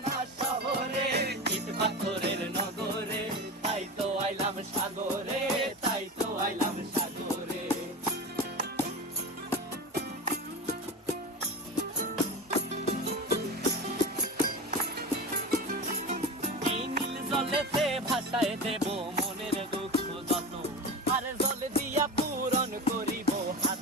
না শহরে, ইট পাথরের নগরে, তাই তো আইলাম সাগরে, তাই তো আইলাম সাগরে। জলেতে ভাসায় দেব মনের দুঃখ যত, আর জল দিয়া পূরণ করিব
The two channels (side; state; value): both; normal; correlation 0.27